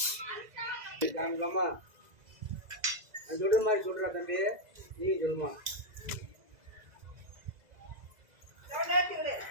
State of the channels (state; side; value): late; left; 2.0 ms